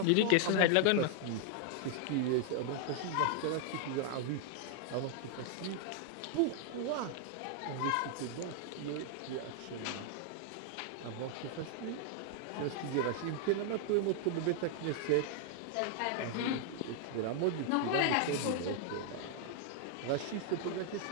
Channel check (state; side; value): different; both; correlation -0.01